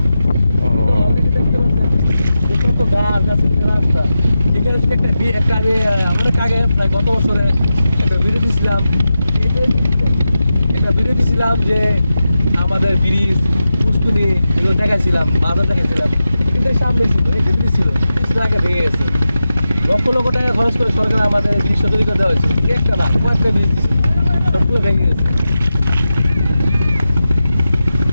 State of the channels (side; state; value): both; inverted; correlation -0.91